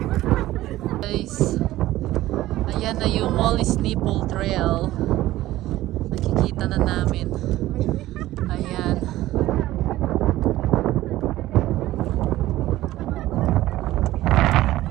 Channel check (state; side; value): quieter; left; 15.8 dB